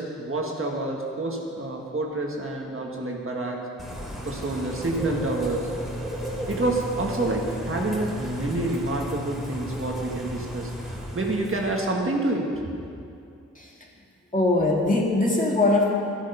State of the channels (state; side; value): normal; both; correlation 0.42